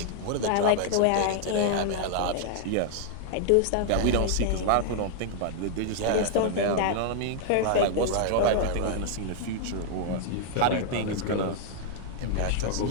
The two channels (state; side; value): different; both; correlation 0.00